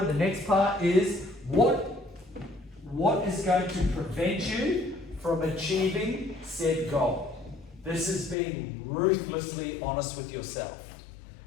The next part is what is going to prevent you from achieving said goal. This is being ruthlessly honest with yourself.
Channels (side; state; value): right; drops out; at 8.3 s